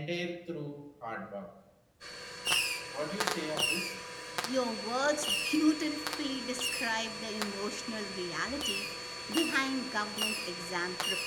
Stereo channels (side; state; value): both; identical; correlation 1.00